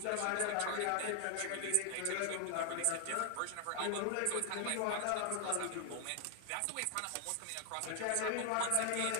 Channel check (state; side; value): different; both; correlation 0.00